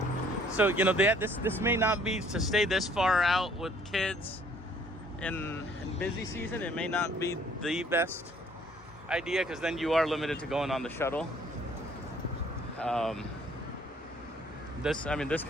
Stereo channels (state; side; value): normal; both; correlation 0.60